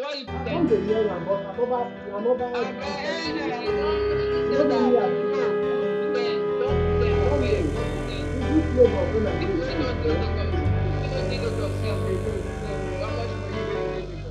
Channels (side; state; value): both; identical; correlation 1.00